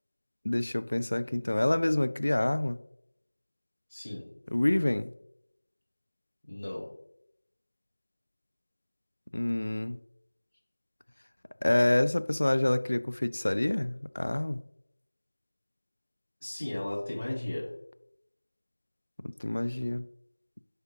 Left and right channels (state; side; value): inverted; both; correlation -1.00